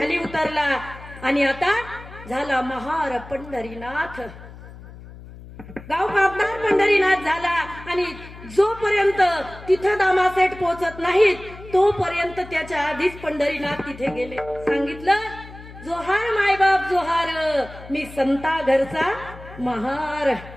उतरला आणि आता झाला महार पंढरीनाथ, गाव कापणार पंढरीनाथ झाला. आणि जोपर्यंत तिथं दामासेठ पोहोचत नाहीत तोपर्यंत त्याच्या आधीच पंढरीनाथ तिथे गेले. सांगितलं, जोहार मायबाप जोहार, मी संता घरचा महार.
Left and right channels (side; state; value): left; noise; hum, 17 dB below the sound